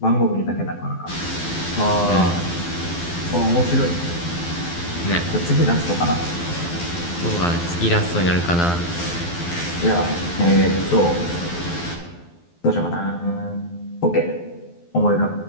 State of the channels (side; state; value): right; late; 12 ms